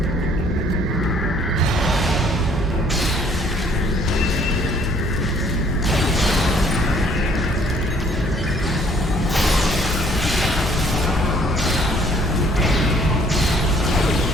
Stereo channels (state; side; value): normal; both; correlation 0.61